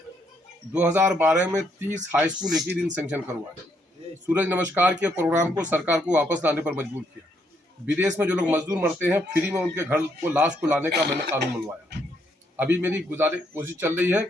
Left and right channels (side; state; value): both; normal; correlation 0.73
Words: 2012 में 30 हाई स्कूल एक ही दिन सैंक्शन करवाए। सूरज नमस्कार के प्रोग्राम को सरकार को वापस लाने पर मजबूर किया। विदेश में जो लोग मजदूर मरते हैं, फ्री में उनके घर को लाश को लाने का मैंने कानून बनवाया। अभी मेरी कोशिश चल रही है